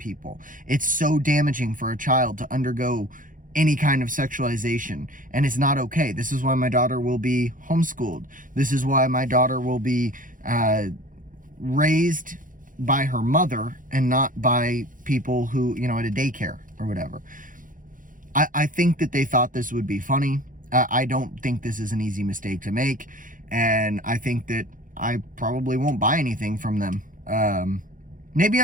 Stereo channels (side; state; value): left; late; 0.39 ms